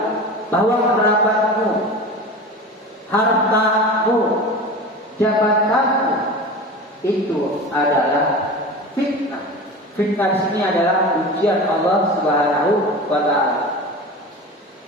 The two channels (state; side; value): normal; both; correlation 0.32